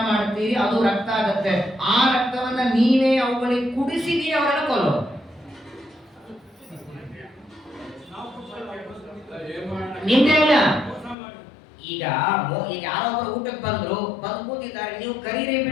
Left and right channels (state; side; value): drops out; right; at 11.2 s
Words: ಮಾಡ್ತೀರಿ, ಅದು ರಕ್ತ ಆಗತ್ತೆ. ಆ ರಕ್ತವನ್ನ ನೀವೇ ಅವುಗಳಿಗೆ ಕುಡಿಸಿದೀರಿ, ಅವರನ್ನ ಕೊಲ್ಲೋ. ನಿಮ್ದೇ ಅಲ್ಲ. ಈಗ ಯಾರೊಬ್ಬರು ಊಟಕ್ಕೆ ಬಂದು ಕೂತಿದ್ದಾರೆ, ನೀವು ಕರೀರಿ